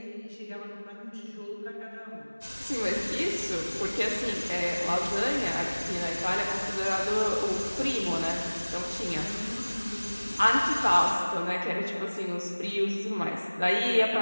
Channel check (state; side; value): inverted; both; correlation -1.00